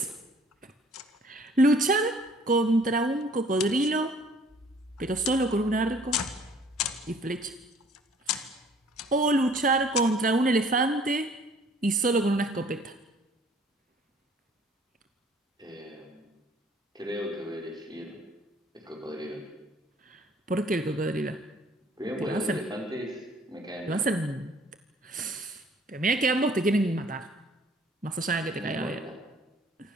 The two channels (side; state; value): both; normal; correlation 0.56